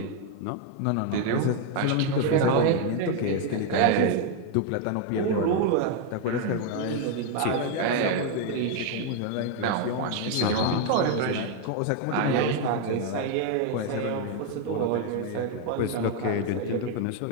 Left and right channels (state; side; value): different; both; correlation 0.01